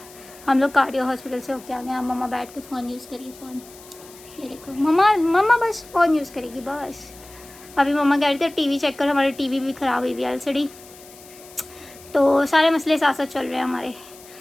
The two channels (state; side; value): noise; left; hiss, 21 dB below the sound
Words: हम लोग कार्डियो हॉस्पिटल से होके आ गए हैं। मम्मा बैठ के फ़ोन यूज़ करिए, फ़ोन ये देखो मम्मा बस फ़ोन यूज़ करेगी बस। अभी मम्मा कह रही थी टीवी चेक कर, हमारी टीवी भी ख़राब हुई हुई है LCD। तो सारे मसले साथ साथ चल रहे हैं हमारे।